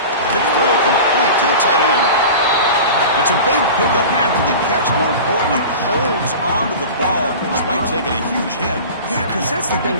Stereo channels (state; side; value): inverted; both; correlation -0.34